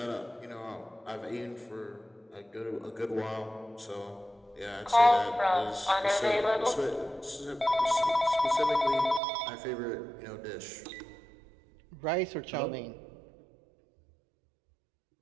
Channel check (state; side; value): drops out; left; at 9.2 s